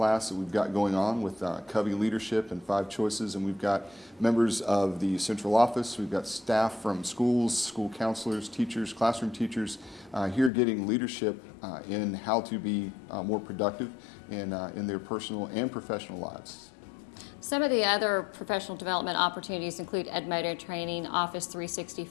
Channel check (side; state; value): right; drops out; at 10.5 s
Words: that we've got going on with Covey Leadership and 5 Choices, and we've got members of the central office, we've got staff from schools, school counselors, teachers, classroom teachers here getting leadership in how to be more productive in their personal and professional lives. Some of the other professional development opportunities include Edmodo training, Office